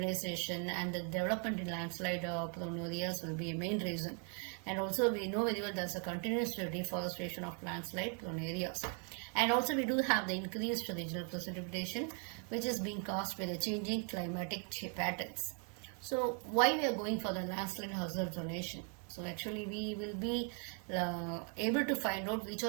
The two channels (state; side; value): quieter; left; 39.0 dB